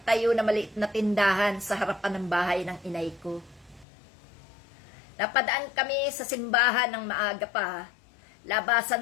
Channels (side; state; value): right; drops out; at 3.9 s